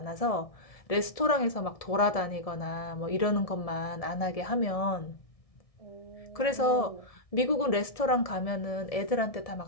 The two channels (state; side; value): late; right; 1.6 ms